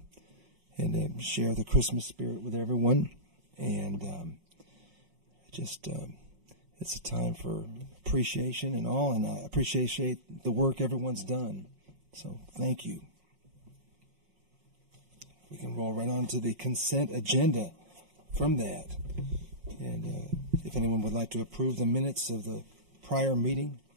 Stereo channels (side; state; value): left; late; 5.5 ms